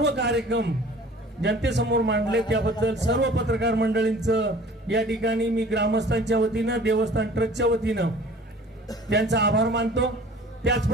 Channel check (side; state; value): both; normal; correlation 0.47